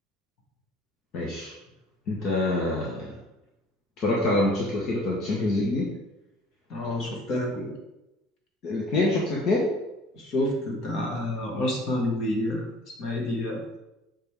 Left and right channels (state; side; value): normal; both; correlation 0.52